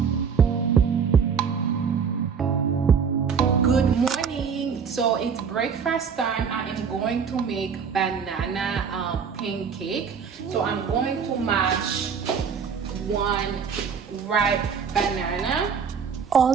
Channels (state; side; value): quieter; left; 6.4 dB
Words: Good morning. So it's breakfast time. I am going to make banana pancake. So I'm going to mash one ripe banana.